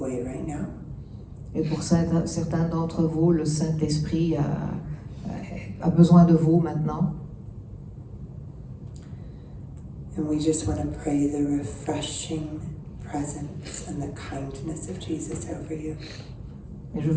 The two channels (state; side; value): identical; both; correlation 1.00